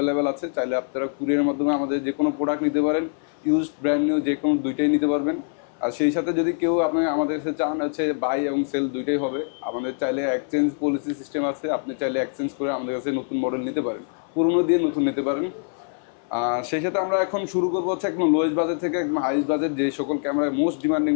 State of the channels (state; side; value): silent; right; 57 dB below the other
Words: আছে। চাইলে আপনারা কুরিয়ারের মাধ্যমে আমাদের যে কোনো প্রোডাক্ট নিতে পারেন, ইউজড ব্র্যান্ড নিউ যে কোনো দুইটাই নিতে পারবেন। আর সেই সাথে যদি কেউ আপনি আমাদের কাছে চান হচ্ছে বাই এবং সেল দুইটাই হবে। আমাদের চাইলে এক্সচেঞ্জ পলিসি সিস্টেম আছে, আপনি চাইলে এক্সচেঞ্জ করে আমাদের কাছে নতুন মডেল নিতে পারেন, পুরনো দিয়ে নতুন নিতে পারেন। সেই সাথে আমরা এখন শুরু করবো হচ্ছে একদম লোয়েস্ট বাজেট থেকে একদম হাইস্ট বাজেট, যে সকল ক্যামেরায় মোস্ট ডিমান্ডিং